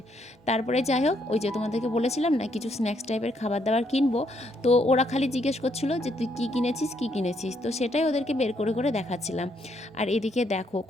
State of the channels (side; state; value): both; normal; correlation 0.73